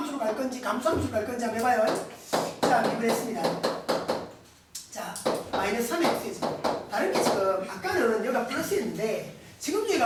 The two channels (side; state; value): both; identical; correlation 1.00